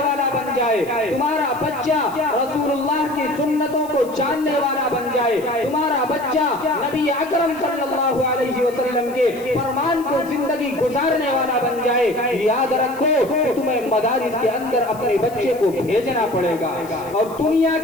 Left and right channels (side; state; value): left; noise; hiss, 21 dB below the sound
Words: بن جائے، تمہارا بچہ رسول اللہ کی سنتوں کو جاننے والا بن جائے، تمہارا بچہ نبی اکرم صلی اللہ علیہ وسلم کے فرمان کو زندگی گزارنے والا بن جائے، یاد رکھو کہ تمہیں مدارس کے اندر اپنے بچے کو بھیجنا پڑے گا۔ اور دنیا